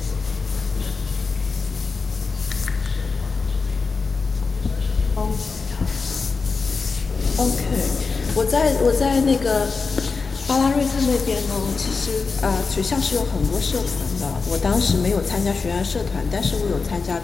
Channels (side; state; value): right; quieter; 4.6 dB